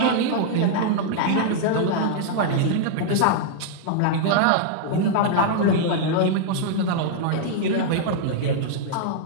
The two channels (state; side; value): different; both; correlation -0.01